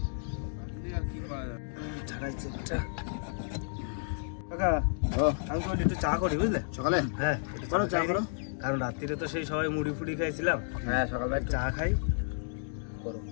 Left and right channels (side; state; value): right; silent; digital silence